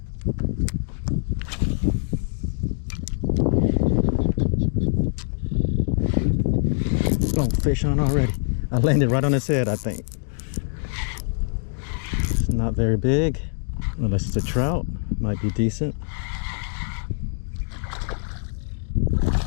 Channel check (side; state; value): right; silent; digital silence